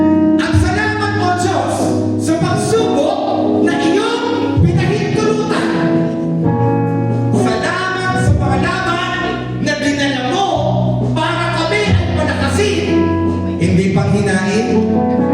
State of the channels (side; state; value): both; identical; correlation 1.00